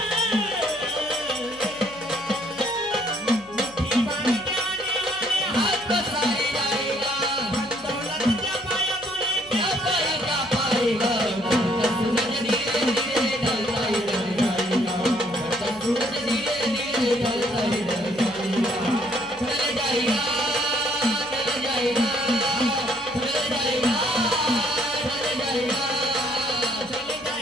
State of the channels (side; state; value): left; noise; hum, 26 dB below the sound